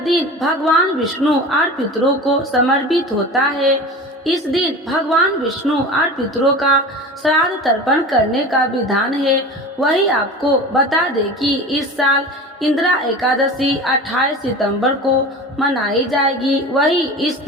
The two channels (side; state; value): both; normal; correlation 0.34